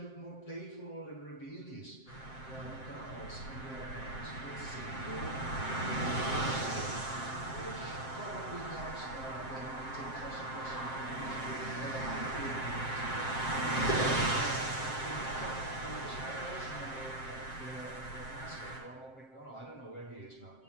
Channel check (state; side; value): late; right; 7.6 ms